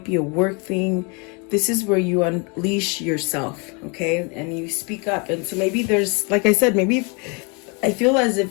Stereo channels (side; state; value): right; quieter; 32.3 dB